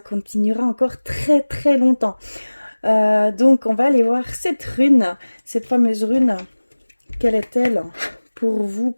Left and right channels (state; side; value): inverted; both; correlation -1.00